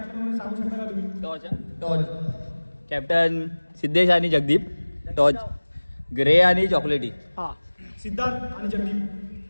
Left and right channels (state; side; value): inverted; both; correlation -1.00